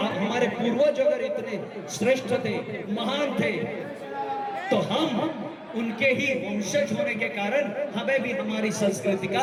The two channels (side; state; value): both; identical; correlation 1.00